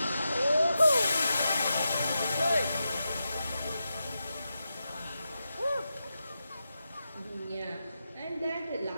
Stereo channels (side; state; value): both; inverted; correlation -0.89